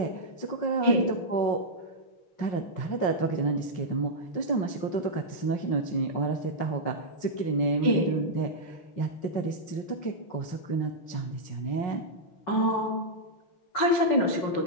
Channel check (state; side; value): late; right; 5.6 ms